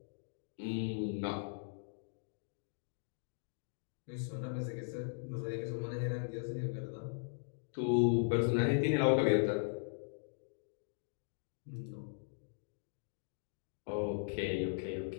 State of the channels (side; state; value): right; silent; digital silence